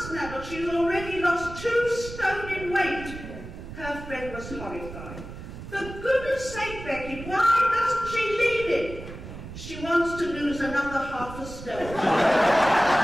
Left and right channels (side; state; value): right; noise; rumble, 12 dB below the sound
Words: now, but she's already lost 2 stone in weight. Her friend was horrified. For goodness sake, Becky, why doesn't she leave him? She wants to lose another half a stone.